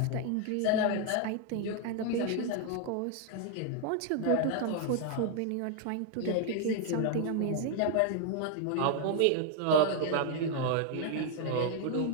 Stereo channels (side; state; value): both; different; correlation 0.01